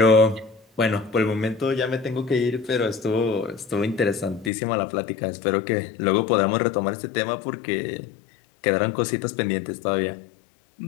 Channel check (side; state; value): right; drops out; at 4.5 s